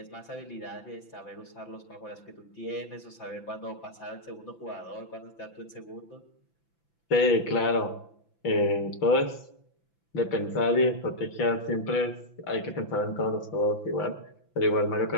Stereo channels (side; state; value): right; late; 5.9 ms